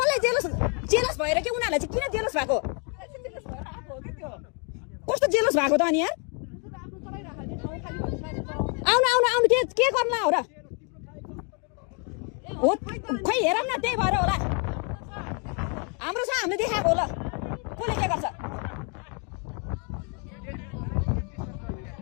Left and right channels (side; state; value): right; quieter; 37.2 dB